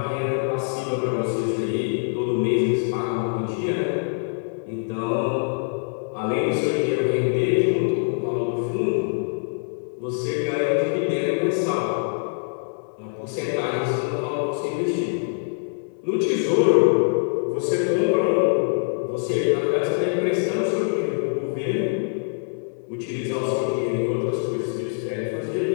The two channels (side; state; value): right; silent; 63 dB below the other